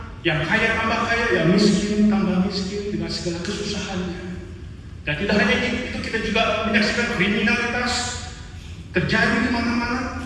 yang kaya tambah kaya, yang miskin tambah miskin dengan segala kesusahannya. Dan tidak hanya itu, kita juga menyaksikan kriminalitas terjadi di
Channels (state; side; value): identical; both; correlation 1.00